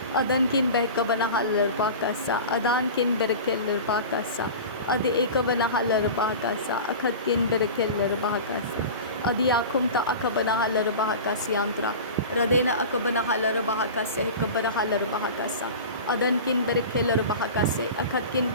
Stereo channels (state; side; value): inverted; both; correlation -0.33